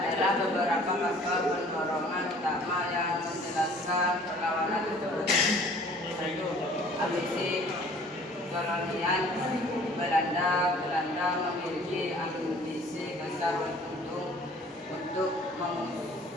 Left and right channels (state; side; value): normal; both; correlation 0.52